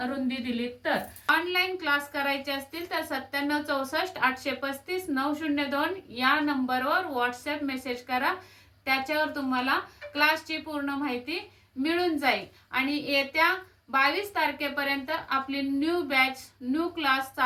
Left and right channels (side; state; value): both; identical; correlation 1.00